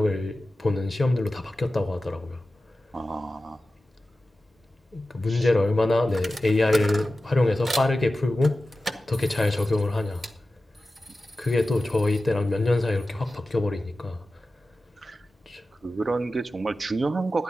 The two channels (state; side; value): normal; both; correlation 0.94